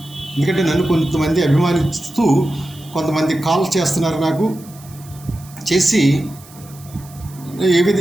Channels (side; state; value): right; noise; hiss, 22 dB below the sound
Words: ఎందుకంటే నన్ను కొంతమంది అభిమానిస్తూ కొంతమంది కాల్ చేస్తున్నారు, నాకు చేసి